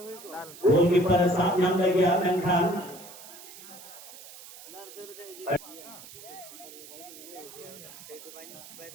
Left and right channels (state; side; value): noise; right; hiss, 16 dB below the sound